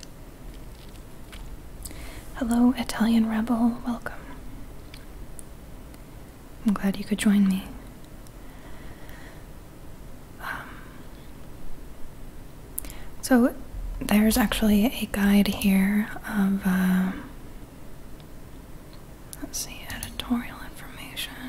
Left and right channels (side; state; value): both; identical; correlation 1.00